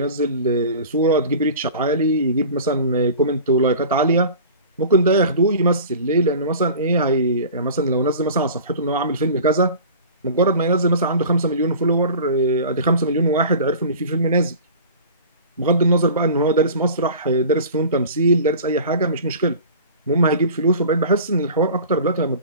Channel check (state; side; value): inverted; both; correlation -0.40